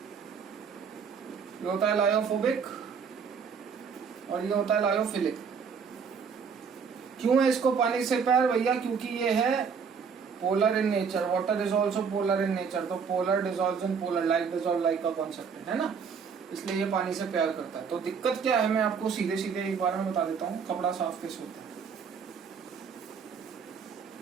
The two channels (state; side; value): quieter; left; 6.2 dB